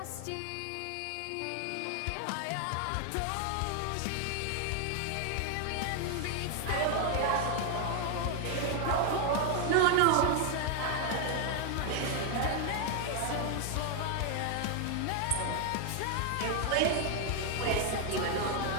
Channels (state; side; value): different; both; correlation 0.00